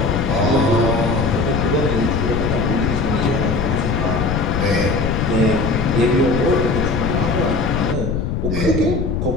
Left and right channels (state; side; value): noise; left; rumble, 1 dB below the sound